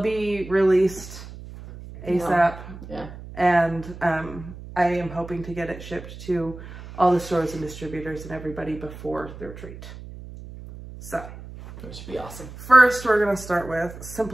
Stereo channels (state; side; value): noise; right; hum, 14 dB below the sound